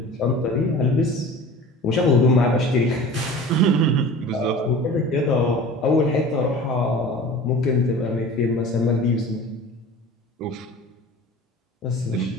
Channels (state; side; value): normal; both; correlation 0.40